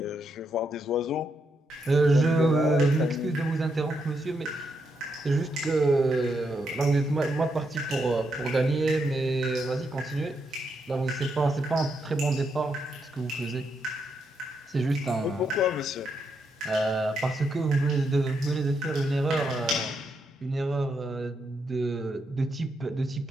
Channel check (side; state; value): both; normal; correlation 0.80